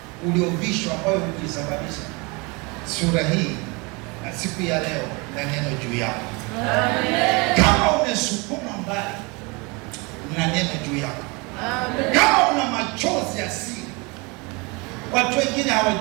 uliovishwa ambayo ukisababisha sura hii na siku ya leo na neno juu yako. Amen. Kama umesukuma mbali na neno juu yako. Amen. Kama una machozi ya siri watu wengine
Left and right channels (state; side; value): quieter; left; 28.1 dB